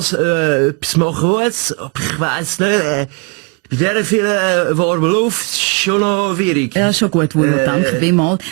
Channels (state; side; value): quieter; left; 31.9 dB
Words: etwas machen muss. Aber ich weiss nicht, bei dieser vielen warmen Luft ist es schon noch schwierig. Ja, schon gut, Wunder, danke vielmals.